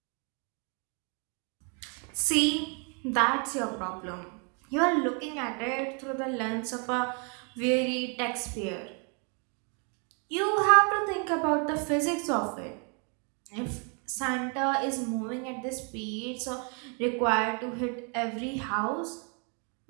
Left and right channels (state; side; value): quieter; left; 37.4 dB